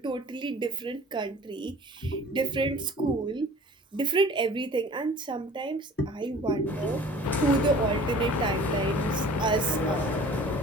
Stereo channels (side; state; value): both; normal; correlation 0.46